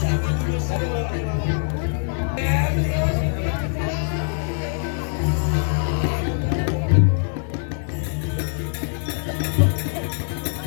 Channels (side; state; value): right; silent; 63 dB below the other